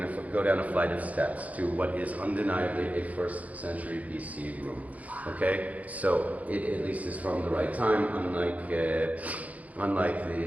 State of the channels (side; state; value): left; late; 0.072 ms